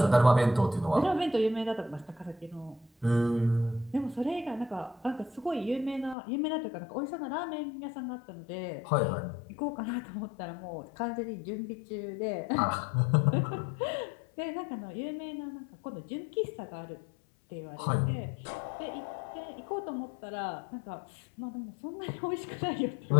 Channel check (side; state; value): right; drops out; at 6.2 s